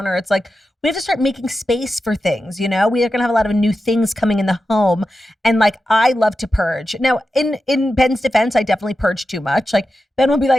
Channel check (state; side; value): normal; both; correlation 0.91